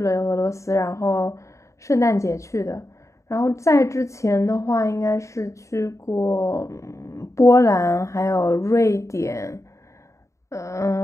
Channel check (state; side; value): late; right; 0.15 ms